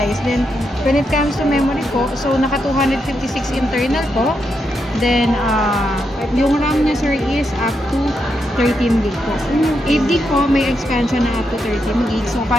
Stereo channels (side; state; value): both; normal; correlation 0.83